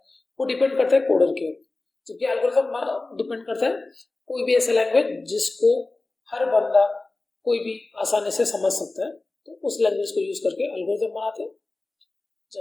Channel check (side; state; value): right; quieter; 3.2 dB